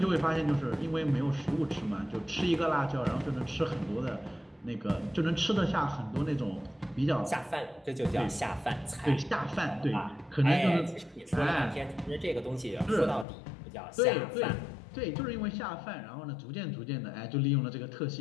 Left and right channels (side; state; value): right; drops out; at 13.2 s